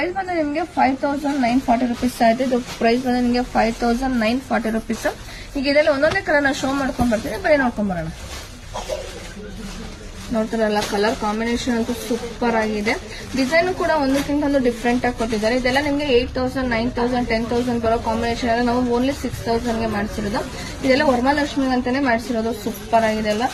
ಬಂದು ನಿಮಗೆ 5940 rupees ಆಯ್ತು. ಇದು ಪ್ರೈಸ್ ಬಂದು ನಿಮಗೆ 5940 rupees. ಈಗ ಇದರಲ್ಲಿ ಒಂದೊಂದೇ ಕಲರ್ ನಾನು ಶೋ ಮಾಡ್ಕೊಂಡ್ ಬರ್ತೀನಿ, ಬರೀ ನೋಡ್ಕೊಂಡ್ ಬರೋಣ. ನೋಡ್ತಾರಲ್ಲ, ಕಲರ್ ಕಾಂಬಿನೇಷನ್ ಅಂತೂ ಸೂಪರ್ ಆಗಿದೆ. ಡಿಸೈನ್ ಕೂಡ ಒಂದಕ್ಕಿಂತ ಒಂದು ಡಿಫ್ರೆಂಟ್ ಆಗಿ ಕೊಟ್ಟಿದ್ದಾರೆ. ಇದೆಲ್ಲ ನಿಮಗೆ 8000, 9000, 10,000 ಬರೋ ಕಾಂಬಿನೇಷನ್ ಎಲ್ಲ ನಾವು ಓನ್ಲಿ 6000 ಗೆ ಮಾಡಿಸಿರೋದು. ಇದೆಲ್ಲ ವರಮಹಾಲಕ್ಷ್ಮಿ ಅಂತಾನೆ ಮಾಡಿಸಿರೋದು. ಸೂಪರ್ ಆಗಿದೆ ಎಲ್ಲ.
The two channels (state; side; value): identical; both; correlation 1.00